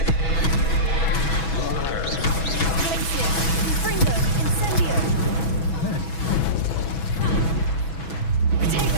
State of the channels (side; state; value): right; late; 6.1 ms